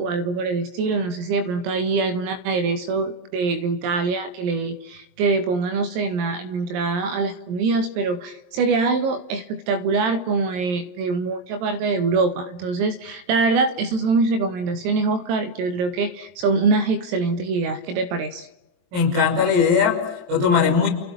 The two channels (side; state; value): left; late; 22 ms